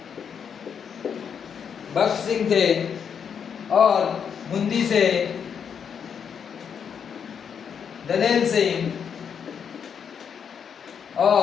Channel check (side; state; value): right; quieter; 7.3 dB